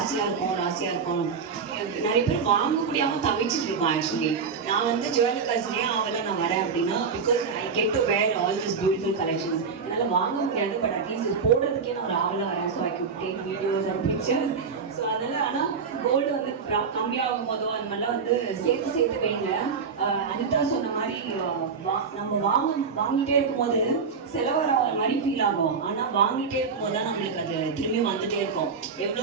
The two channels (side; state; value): left; quieter; 5.6 dB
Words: இருக்கும். நிறைய பேர் வாங்க முடியாமல் தவிச்சிட்டு இருக்கோம். ஆக்சுவலி நான் வந்து ஜுவல்காஸ் ஏன் ஆகலை நான் வரேன் அப்படின்னா, because I get to where all this beautiful collections. என்னால் வாங்க முடியாது, பட் அட்லீஸ்ட் இது போடுறதுக்கே நான் ஒரு ஆவலாக வரேன். So I could take videos and fixtures. So அதனால் ஆனால் கோல்டு வந்து கம்மியாகும் போதோ அந்த மாதிரிலாம் வந்து சேர்த்து வைங்க. அனிதா சொன்ன மாதிரி நம்ம வாங்கிட்டே இருக்கும்போது செலவர மாதிரி ஃபீல் ஆகும். ஆனால் வாங்கிட்டே இருக்கும்போது தான் நம்மளுக்கு அது திரும்பியும் வந்துட்டே இருக்கும்.